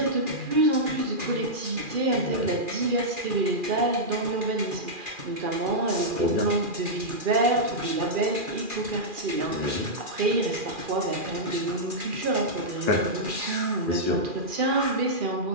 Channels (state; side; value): late; left; 2.4 ms